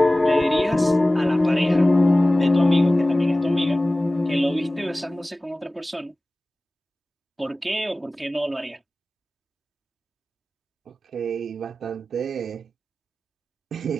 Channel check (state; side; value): normal; both; correlation 0.97